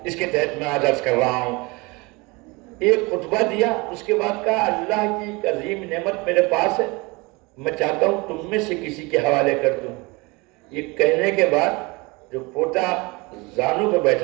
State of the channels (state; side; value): quieter; left; 25.7 dB